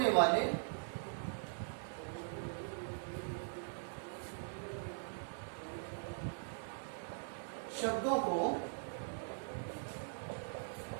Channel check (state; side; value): silent; left; digital silence